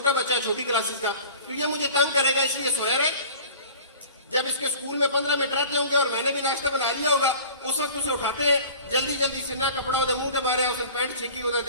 بچہ ہے چھوٹی کلاسز کا، تو یہ مجھے تنگ کرے گا، اس لیے سویا رہے. جب اس کے اسکول میں 15 منٹ رہتے ہوں گے اور میں نے بھی ناشتہ بنا لیا ہوگا، اس وقت اسے اٹھاتے ہیں، جلدی جلدی سننا کپڑا ہوتا منہ کے مارے، اس نے پینٹ چھینکی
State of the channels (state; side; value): inverted; both; correlation -0.44